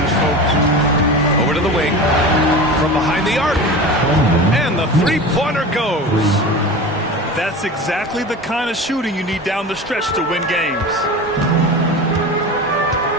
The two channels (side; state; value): both; normal; correlation 0.31